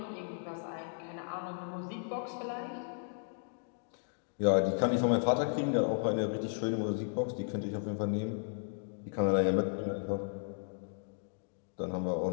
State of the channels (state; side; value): silent; right; digital silence